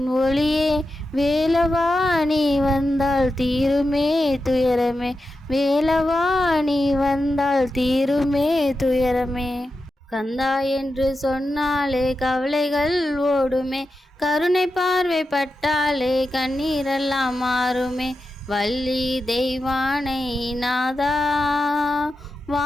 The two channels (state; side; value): normal; both; correlation 0.90